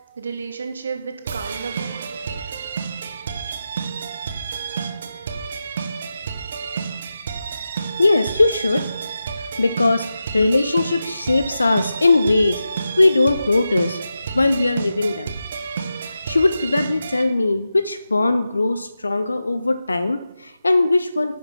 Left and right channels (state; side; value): inverted; both; correlation -0.91